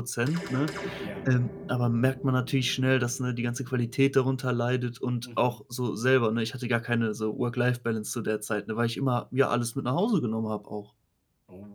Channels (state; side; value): identical; both; correlation 1.00